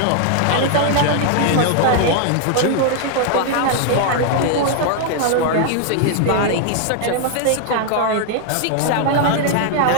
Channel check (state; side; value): different; both; correlation 0.00